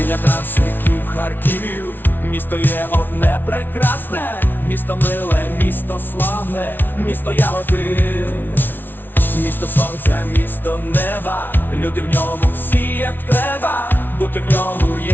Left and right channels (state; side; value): late; right; 0.095 ms